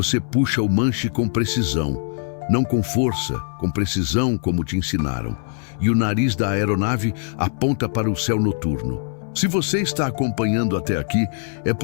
puxa o manche com precisão, não com força, com precisão como te ensinaram. E o nariz da aeronave aponta para o céu noturno. Se você está acompanhando até aqui, é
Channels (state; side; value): silent; right; 61 dB below the other